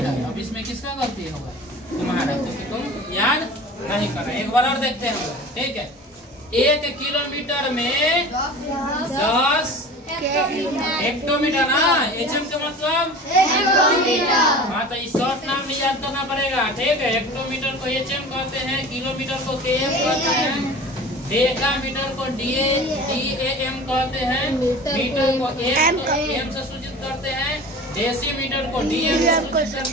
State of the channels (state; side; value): normal; both; correlation 0.38